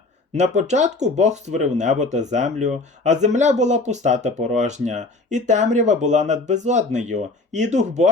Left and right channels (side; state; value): right; quieter; 3.3 dB